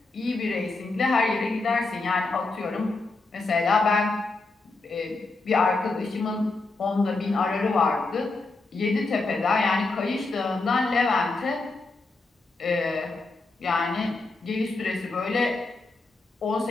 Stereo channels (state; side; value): quieter; right; 3.5 dB